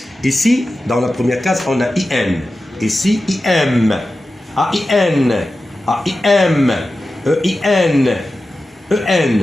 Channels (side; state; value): both; normal; correlation 0.93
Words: Ici, dans la première case, on a IN. Ici, IM. AIN. AIM. EIN.